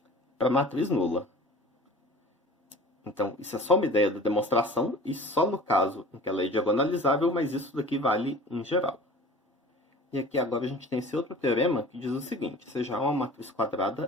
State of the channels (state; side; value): normal; both; correlation 0.43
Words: para a matriz nula. Então, isso é só uma ideia da demonstração e só no caso em que ela é diagonalizável, mas isso daqui vale em geral. E aqui agora a gente tem esse outro teorema que diz o seguinte, seja A uma matriz